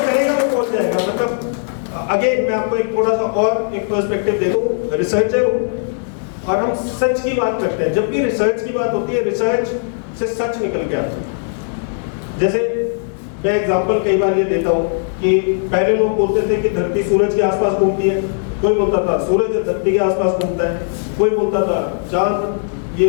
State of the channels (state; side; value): silent; right; digital silence